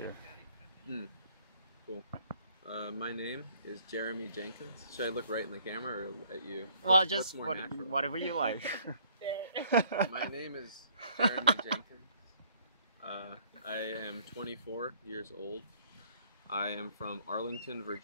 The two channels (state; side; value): inverted; both; correlation -0.61